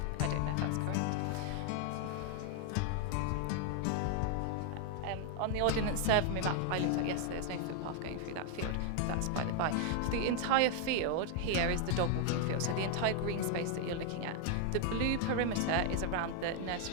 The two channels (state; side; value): different; both; correlation 0.00